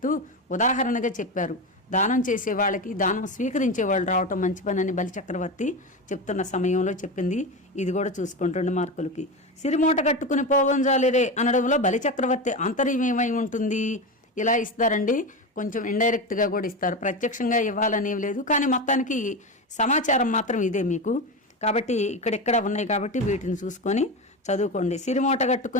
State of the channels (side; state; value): both; normal; correlation 0.20